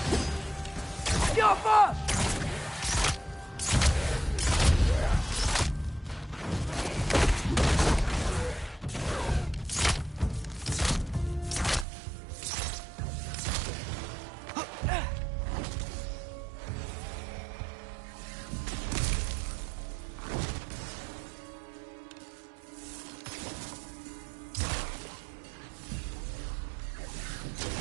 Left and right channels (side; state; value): left; drops out; at 11.9 s